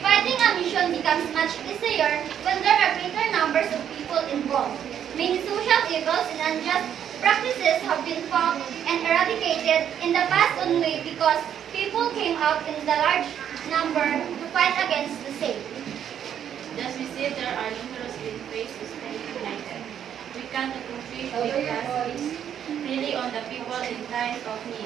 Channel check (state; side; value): quieter; left; 9.3 dB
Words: a mission becomes much easier when there are greater numbers of people involved. Many social evils and unjust practices have been found and eradicated in the past only because people came out in the large number to fight against the same. Thus we see there are numerous ways to stay united. We can accomplish big tasks really on the people in times of